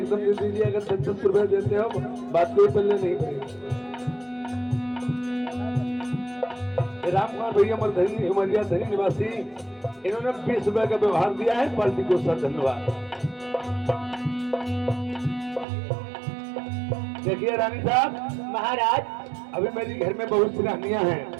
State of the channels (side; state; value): left; drops out; at 15.7 s